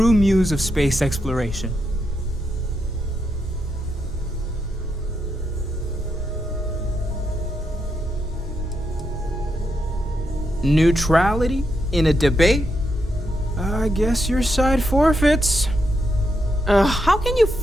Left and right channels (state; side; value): normal; both; correlation 0.82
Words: muse of space exploration? Neutrality in a debate? I guess your side forfeits. How can you